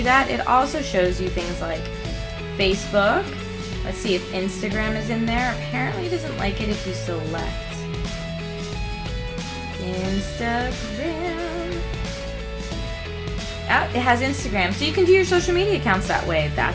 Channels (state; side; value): identical; both; correlation 1.00